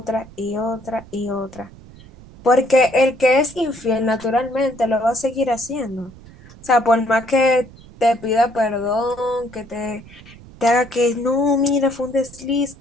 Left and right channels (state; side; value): noise; right; rumble, 21 dB below the sound